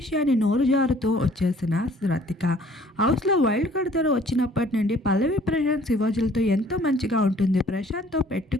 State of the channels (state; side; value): normal; both; correlation 0.56